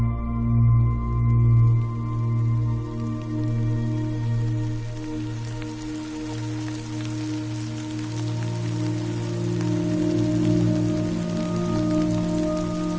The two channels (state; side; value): identical; both; correlation 1.00